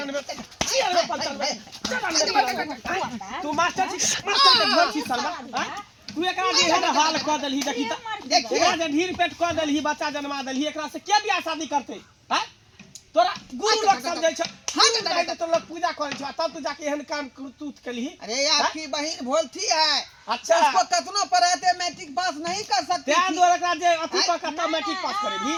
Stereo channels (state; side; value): identical; both; correlation 1.00